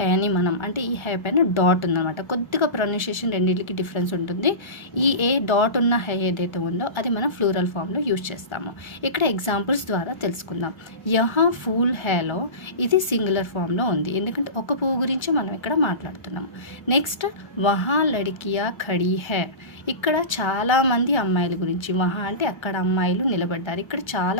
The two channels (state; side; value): late; right; 1.3 ms